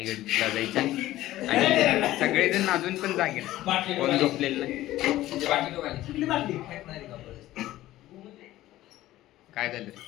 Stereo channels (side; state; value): right; quieter; 15.3 dB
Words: जायचा आणि सगळेजण अजून पण जागे, कोण झोपलेलं नाही. काय झालं?